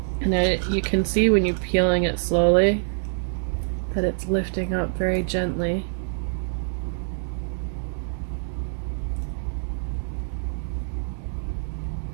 And you can see when you're peeling it slowly that it's lifting up very gently.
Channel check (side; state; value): left; silent; digital silence